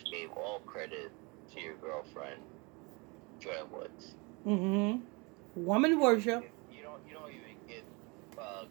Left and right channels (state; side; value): quieter; left; 28.5 dB